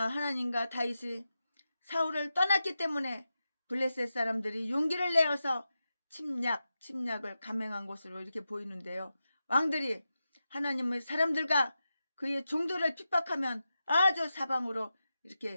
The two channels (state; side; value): inverted; both; correlation -0.90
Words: 하나님과 다윗이 사울을 떠났기 때문에 블레셋 사람들이 용기를 내어서 침략을 감행한 것으로 이렇게 보이는데요. 왕들이 하나님의 사람들과 그의 종들을 핍박하면 아주 사방으로